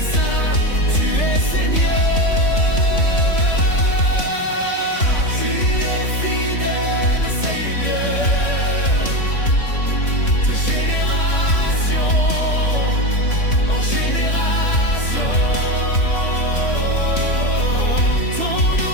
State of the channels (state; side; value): late; right; 3.3 ms